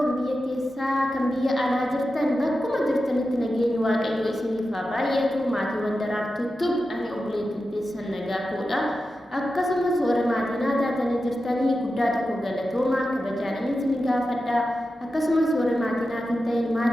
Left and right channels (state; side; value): normal; both; correlation 0.91